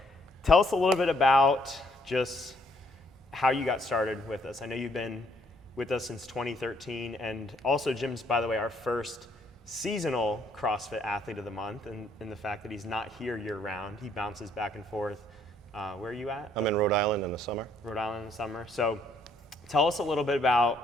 tell us a little bit about just how you got started with us. I know you've been with us since 2013, and also Jim's, by the way, our first seasonal CrossFit athlete of the month, and the fact that he's not here year round. He bounces back and forth. Where are you at? I'm in Rhode Island in the summer. Rhode Island in the summer. So tell us a little bit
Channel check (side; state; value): both; normal; correlation 0.67